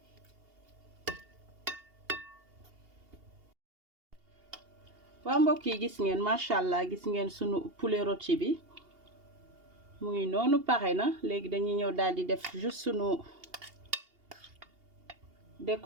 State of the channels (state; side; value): late; left; 2.8 ms